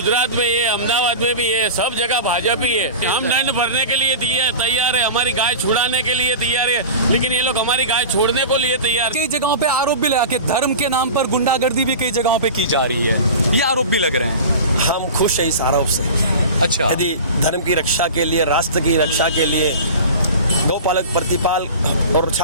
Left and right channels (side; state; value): both; inverted; correlation -0.34